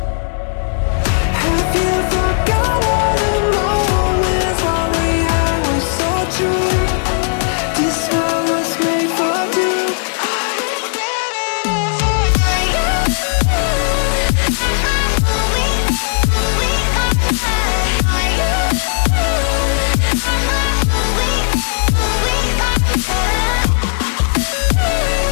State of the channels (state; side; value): silent; right; digital silence